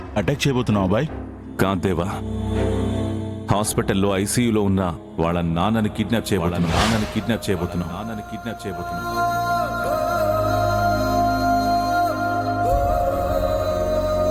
అటాక్ చేయబోతున్నావా బాయ్? కాంతేవా, హాస్పిటల్లో ఐసీయూలో ఉన్న వాళ్ళ నాన్నని కిడ్నాప్ చేయబోతున్నాం.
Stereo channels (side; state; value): both; identical; correlation 1.00